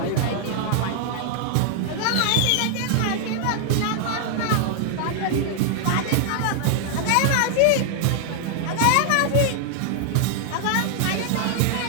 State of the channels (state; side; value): different; both; correlation 0.00